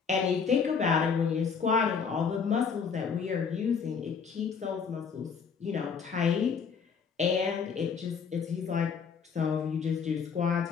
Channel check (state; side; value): quieter; right; 6.1 dB